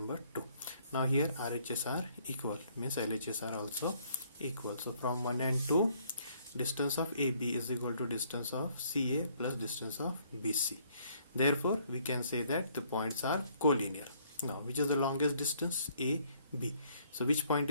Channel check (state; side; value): inverted; both; correlation -0.64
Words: 2. Now here RHS are equal, means LHS are also equal. So from 1 and 2, distance of AB is equal to distance of CA plus distance of BC. Therefore we can say that the points are collinear. Now which is the longest distance? A, B. So which point